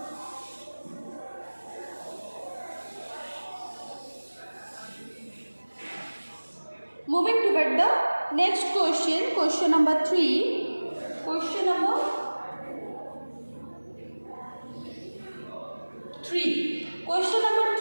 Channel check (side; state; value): both; inverted; correlation -1.00